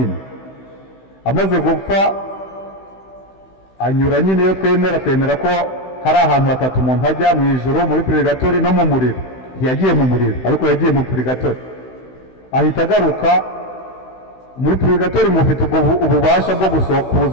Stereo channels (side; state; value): right; late; 16 ms